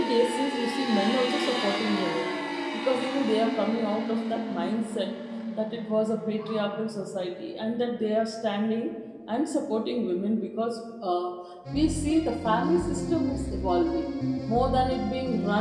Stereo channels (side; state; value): both; identical; correlation 1.00